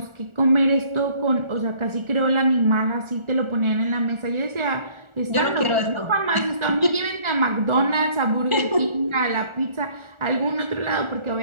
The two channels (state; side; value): late; left; 1.4 ms